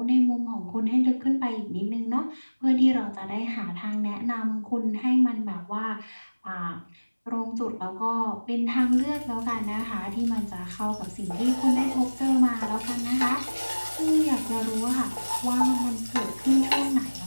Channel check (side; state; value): both; inverted; correlation -1.00